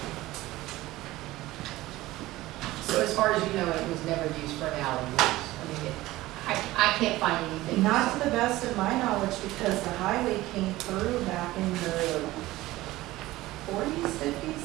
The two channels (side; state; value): left; quieter; 17.6 dB